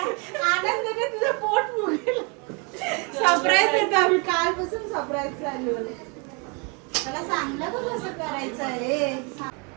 तुझं पोट फुगलं. सरप्राईज देतो आम्ही. कालपासून सरप्राईज चालू आहे. मला सांगलं बघ कसं करायचं आहे.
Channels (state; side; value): quieter; left; 33.1 dB